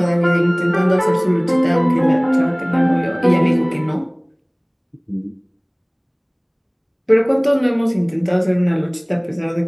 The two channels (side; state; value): both; identical; correlation 1.00